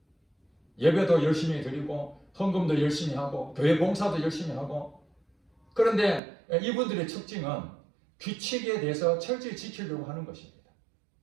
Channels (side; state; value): left; drops out; at 6.2 s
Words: 예배도 열심히 드리고 헌금도 열심히 하고 교회 봉사도 열심히 하고, 그런데 이분들의 특징은 규칙에 대해서 철저히 지키려고 하는 것입니다.